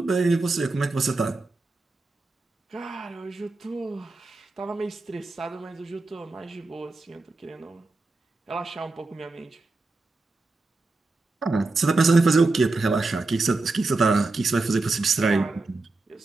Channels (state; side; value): quieter; left; 3.4 dB